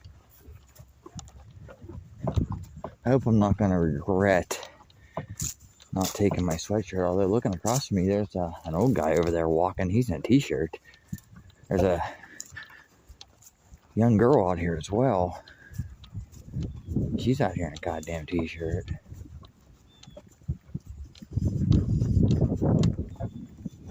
I hope I'm not gonna regret not taking my sweatshirt, although looking across from me, there's an old guy over there walking. He's in a t-shirt. There's a young girl out here as well. She's out here in a goddamn t-shirt.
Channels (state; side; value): identical; both; correlation 1.00